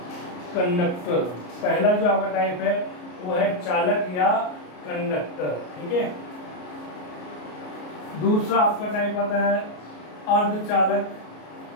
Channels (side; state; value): right; late; 33 ms